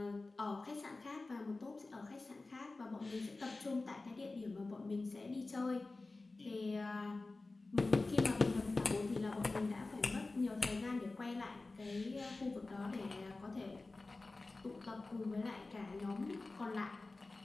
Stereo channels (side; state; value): right; quieter; 3.4 dB